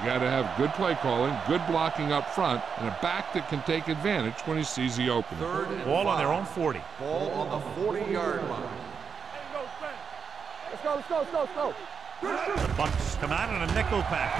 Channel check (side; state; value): left; quieter; 6.2 dB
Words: got to have good play calling, good blocking up front, and a back that can take advantage when he sees the opening. Ball on their own 40. Ball on the 40-yard line. Let's go. The Bucks come out in a nickel